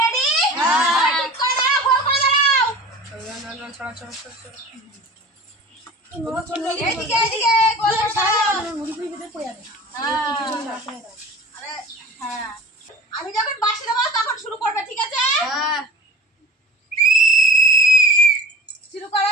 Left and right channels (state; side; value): normal; both; correlation 0.39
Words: ঠিক করে দাঁড়াও, গোল করে দাঁড়াও। এদিকে এদিকে গোল করে দাঁড়াও। হ্যাঁ, আমি যখন বাঁশি দেবো তখন শুরু করবে, ঠিক আছে? শুরু করো